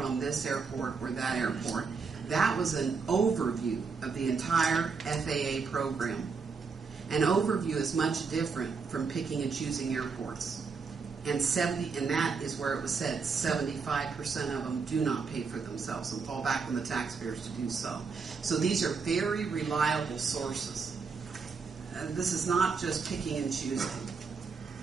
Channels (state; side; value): quieter; left; 5.1 dB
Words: on this airport or that airport. That was an overview of the entire FAA program. An overview is much different from picking and choosing airports. And that is where it was said 75% of them do not pay for themselves and fall back on the taxpayers to do so. So these are very reliable sources. This is not just picking and choosing.